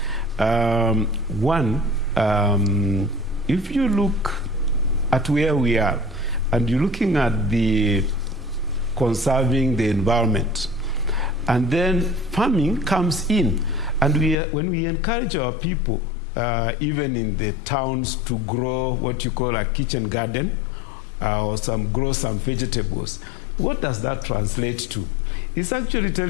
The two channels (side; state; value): right; drops out; at 14.4 s